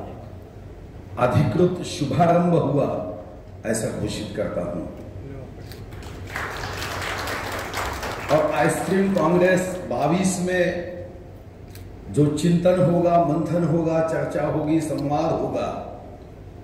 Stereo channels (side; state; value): both; identical; correlation 1.00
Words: अधिकृत शुभारंभ हुआ ऐसा घोषित करता हूं। और आइसक्रीम कांग्रेस 22 में जो चिंतन होगा, मंथन होगा, चर्चा होगी, संवाद होगा,